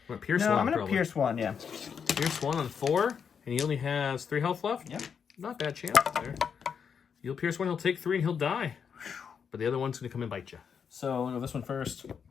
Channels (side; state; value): right; quieter; 6.9 dB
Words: You want Pierce No, 1, I'm going to probably. pierce 1, yeah. Pierce 1 on 4, and he only has 3 health left? Yep. Not bad chance there. You'll pierce 1, he'll take 3, and he'll die. But the other one's going to come and bite you. So we'll go this one first.